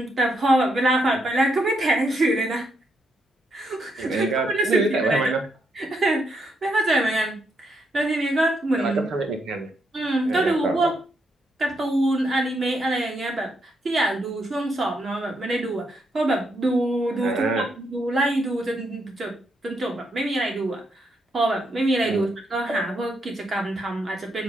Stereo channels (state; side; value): normal; both; correlation 0.78